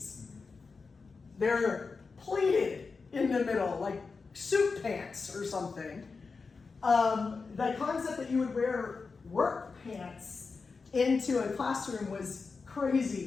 They're pleated in the middle, like suit pants or something. The concept that you would wear work pants into a classroom was crazy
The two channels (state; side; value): quieter; right; 4.6 dB